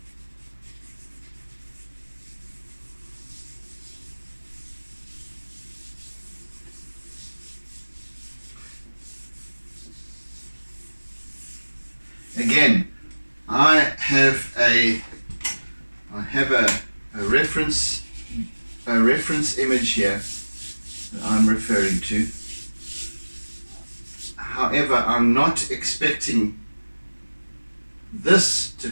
Again, I have a reference image here that I'm referring to. However, I'm not expecting this to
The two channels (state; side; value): inverted; both; correlation -1.00